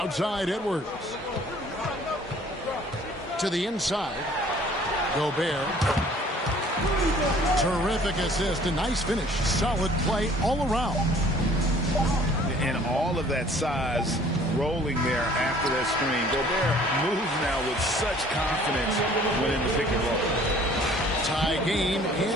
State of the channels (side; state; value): both; normal; correlation 0.54